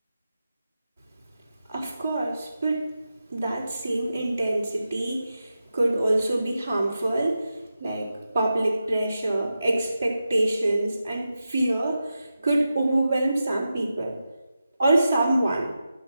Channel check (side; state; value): both; inverted; correlation -0.91